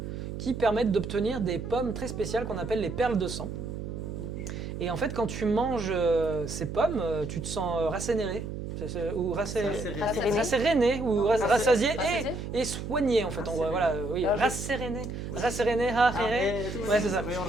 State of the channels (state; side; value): noise; right; hum, 7 dB below the sound